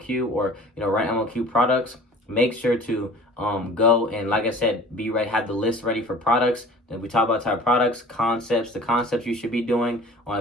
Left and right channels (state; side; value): normal; both; correlation 0.45